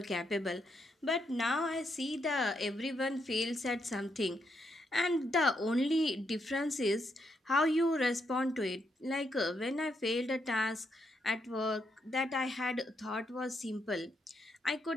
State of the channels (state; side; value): normal; both; correlation 0.79